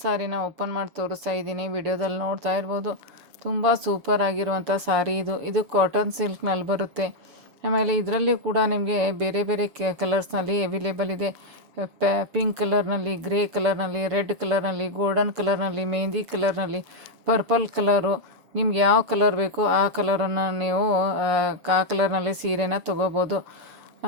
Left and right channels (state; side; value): late; left; 7.2 ms